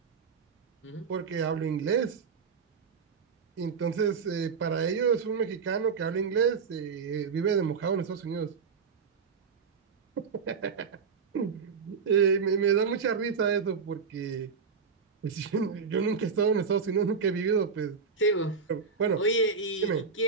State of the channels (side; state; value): left; quieter; 5.6 dB